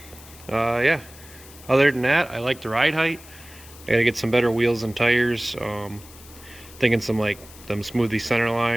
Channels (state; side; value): noise; left; hiss, 20 dB below the sound